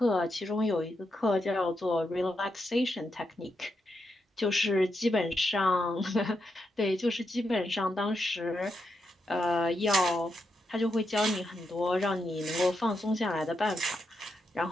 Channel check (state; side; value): normal; both; correlation 0.84